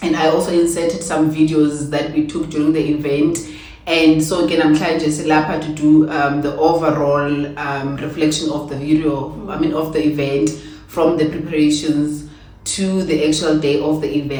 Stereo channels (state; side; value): identical; both; correlation 1.00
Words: and I also inserted some videos that we took during the event. And so again, I'm trying just to do the overall reflection of the video, of the event, from the preparations to the actual day of the